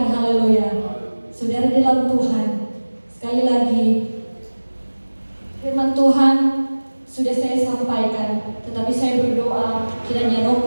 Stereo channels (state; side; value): inverted; both; correlation -1.00